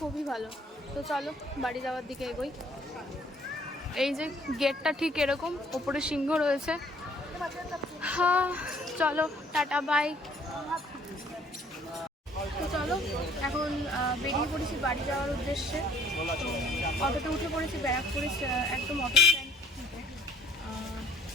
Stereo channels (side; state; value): both; normal; correlation 0.60